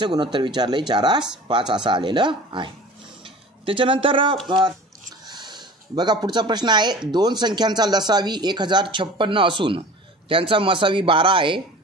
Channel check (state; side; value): normal; both; correlation 0.40